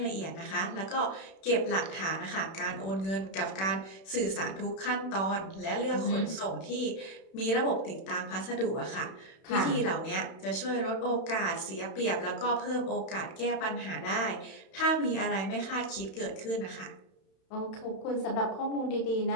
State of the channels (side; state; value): right; late; 31 ms